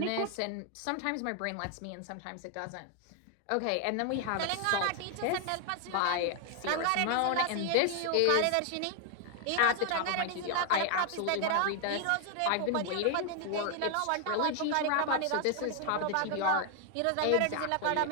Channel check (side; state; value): both; different; correlation 0.00